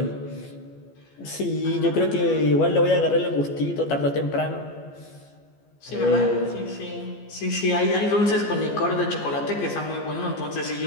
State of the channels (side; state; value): right; late; 15 ms